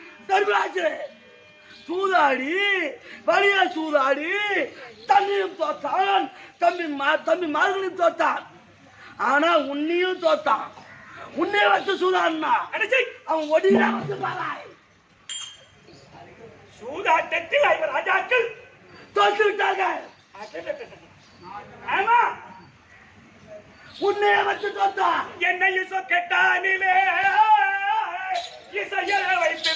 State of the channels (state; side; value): identical; both; correlation 1.00